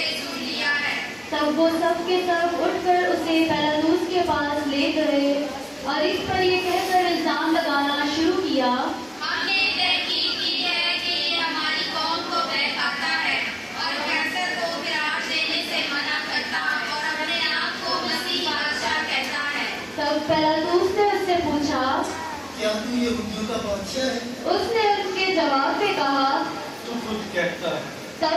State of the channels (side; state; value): both; identical; correlation 1.00